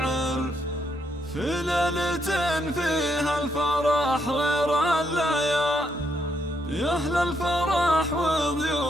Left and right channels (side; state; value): both; normal; correlation 0.76